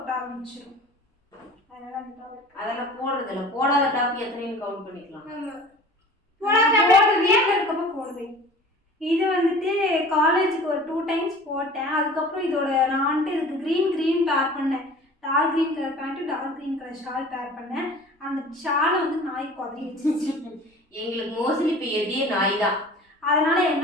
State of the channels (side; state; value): both; normal; correlation 0.43